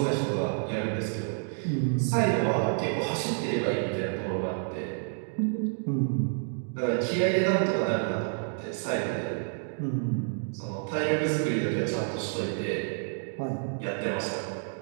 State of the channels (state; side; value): silent; left; 58 dB below the other